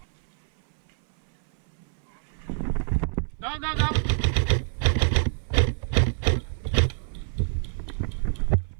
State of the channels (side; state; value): left; silent; 58 dB below the other